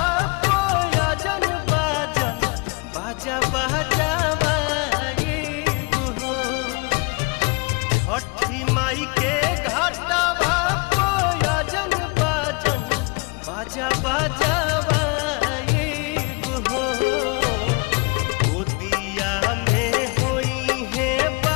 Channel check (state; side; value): quieter; right; 29.9 dB